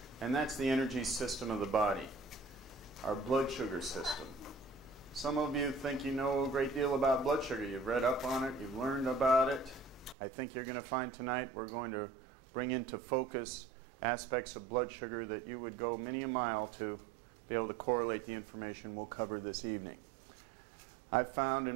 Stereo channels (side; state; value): left; drops out; at 10.2 s